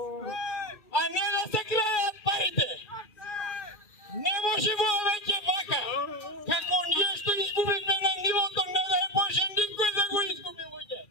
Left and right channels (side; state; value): right; late; 2.1 ms